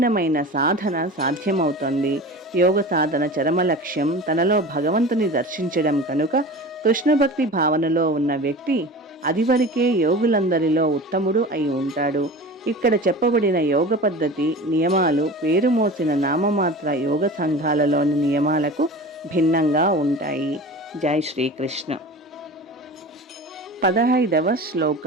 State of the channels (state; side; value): normal; both; correlation 0.34